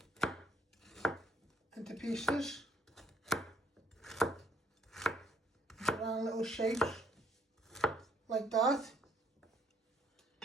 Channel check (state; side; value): normal; both; correlation 0.67